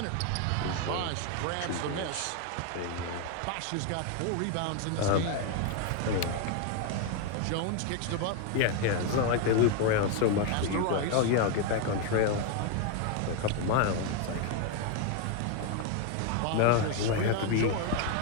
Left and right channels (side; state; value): both; different; correlation 0.01